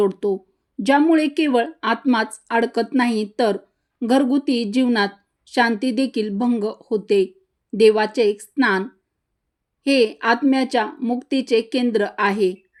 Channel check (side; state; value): both; identical; correlation 1.00